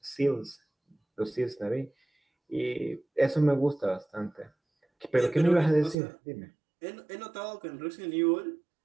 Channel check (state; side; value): drops out; left; at 6.0 s